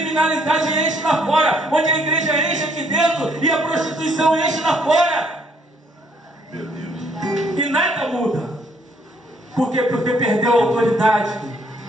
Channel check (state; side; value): normal; both; correlation 0.66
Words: enche lá fora, onde a igreja enche aqui dentro e a prostituição enche lá fora. Meu Deus. E nada muda. Por quê? Porque perdeu a autoridade.